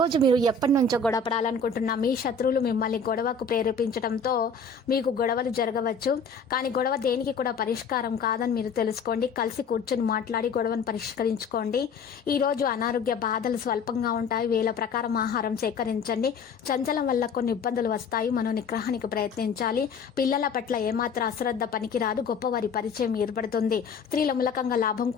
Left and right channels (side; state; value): right; quieter; 4.7 dB